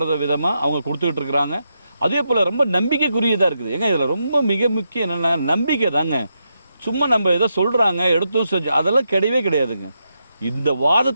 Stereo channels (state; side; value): inverted; both; correlation -0.84